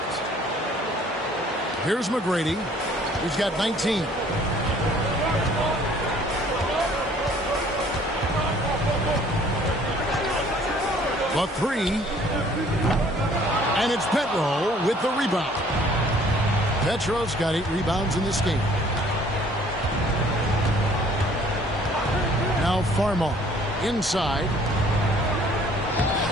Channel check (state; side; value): normal; both; correlation 0.57